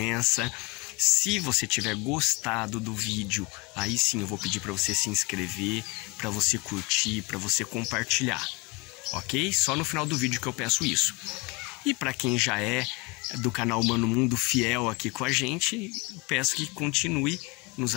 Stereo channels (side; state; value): right; quieter; 27.1 dB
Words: Se você tiver gostado do vídeo, aí sim eu vou pedir para você se inscrever, para você curtir, para você compartilhar, ok? Só no final do vídeo que eu peço isso. E para quem já é do canal Humano Mundo fiel aqui com a gente, peço que continue nos